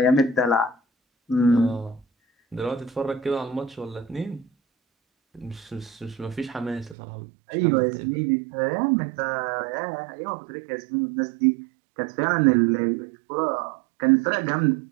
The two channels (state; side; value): drops out; left; at 7.0 s